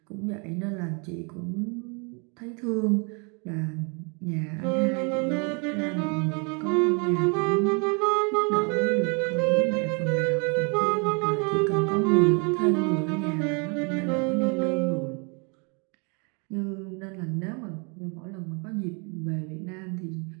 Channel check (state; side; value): quieter; left; 34.2 dB